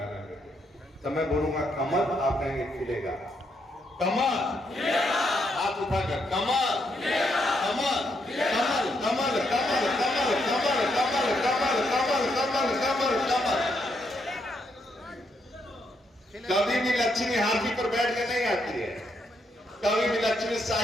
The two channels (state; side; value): normal; both; correlation 0.77